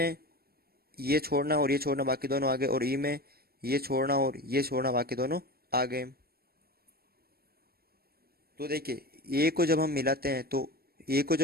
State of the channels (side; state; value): left; late; 0.45 ms